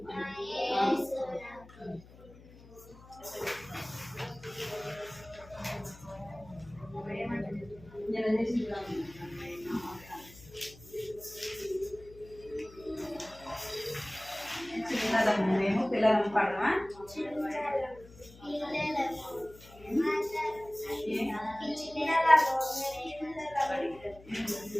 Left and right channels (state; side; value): noise; left; hum, 21 dB below the sound